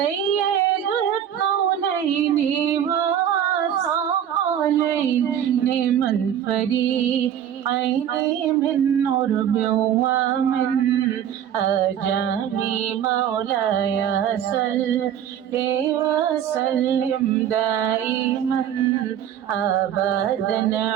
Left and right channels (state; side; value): quieter; left; 9.8 dB